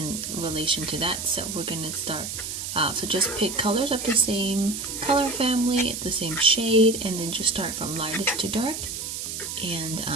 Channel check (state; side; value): noise; right; hiss, 6 dB below the sound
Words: relation to that. So we're gonna start. So just pick colors of the same color family, the same shade, and then just start from lightest to dark and